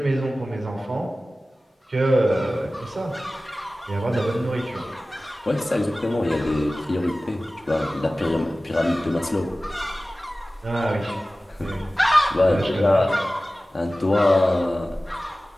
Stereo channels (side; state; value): both; normal; correlation 0.97